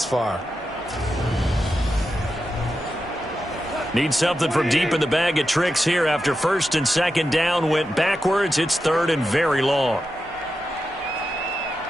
far. Need something from deep in the bag of tricks here after 1st and 2nd down went backwards. It's 3rd and very long.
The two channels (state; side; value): normal; both; correlation 0.89